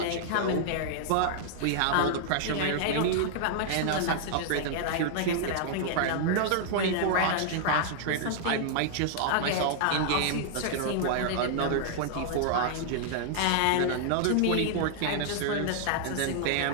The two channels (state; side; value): different; both; correlation -0.01